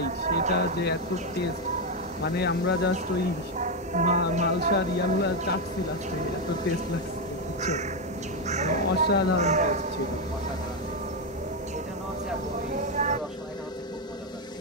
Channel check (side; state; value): both; normal; correlation 0.06